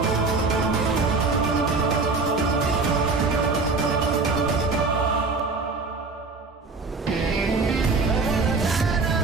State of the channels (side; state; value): left; quieter; 4.0 dB